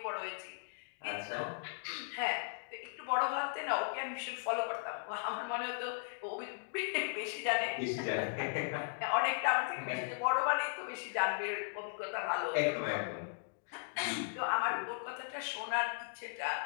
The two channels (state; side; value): silent; right; digital silence